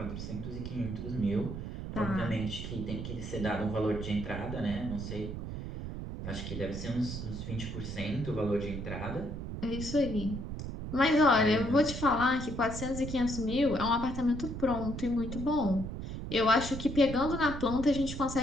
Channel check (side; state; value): right; noise; rumble, 7 dB below the sound